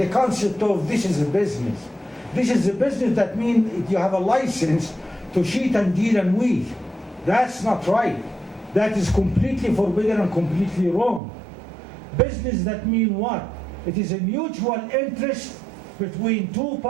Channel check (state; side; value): drops out; left; at 11.2 s